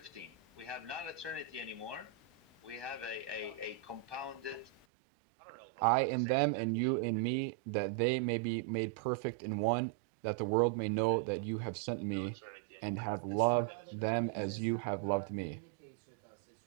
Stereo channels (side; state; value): left; drops out; at 4.9 s